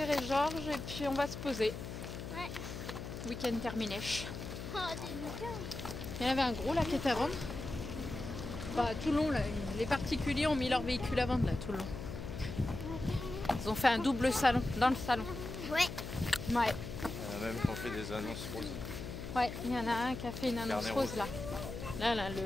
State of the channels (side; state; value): left; noise; hum, 8 dB below the sound